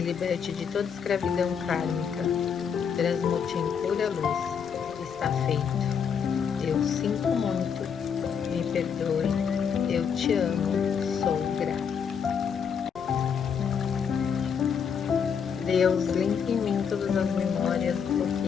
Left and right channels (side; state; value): right; quieter; 7.0 dB